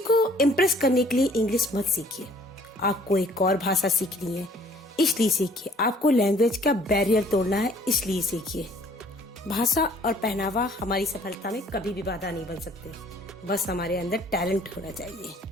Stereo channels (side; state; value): both; normal; correlation 0.57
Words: को इम्प्रेस करने के लिए इंग्लिश मत सीखिए। आपको एक और भाषा सीखनी है, इसलिए सीखिए। आपको लैंग्वेज का बैरियर तोड़ना है, इसलिए सीखिए। भाषा और पहनावा हमारी सफलता में कभी भी बाधा नहीं बन सकते, बस हमारे अंदर टैलेंट होना चाहिए।